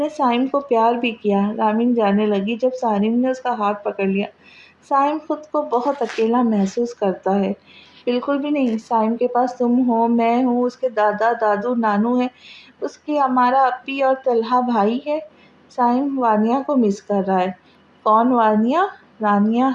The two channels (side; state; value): both; identical; correlation 1.00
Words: سائم کو پیار بھی کیا، رامین جانے لگی جب سارم نے اس کا ہاتھ پکڑ لیا۔ سائم خود کو بہت اکیلا محسوس کرتا ہے۔ بالکل بھی نہیں، سائم کے پاس تم ہو، میں ہوں، اس کے دادا دادو نانو ہے، اس کی ہمارا اپی اور طلحہ بھائی ہے۔ سائم وانیا کو مس کر رہا ہے۔ کون وانیا؟